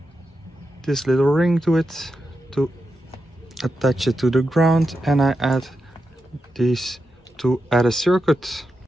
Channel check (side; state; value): both; normal; correlation 0.88